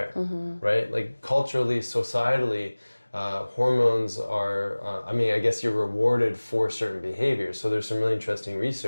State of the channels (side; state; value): both; inverted; correlation -1.00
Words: right? Like culturally, societally, hormones are, I guess you're rewarded for certain behaviors. So there's some really interesting